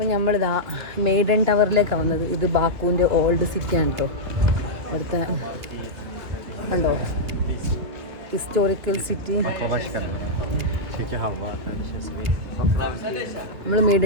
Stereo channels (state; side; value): late; left; 2.8 ms